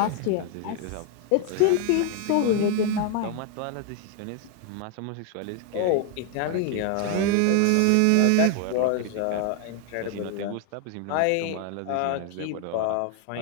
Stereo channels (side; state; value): both; different; correlation 0.01